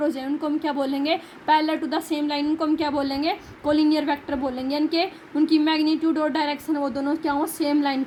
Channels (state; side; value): identical; both; correlation 1.00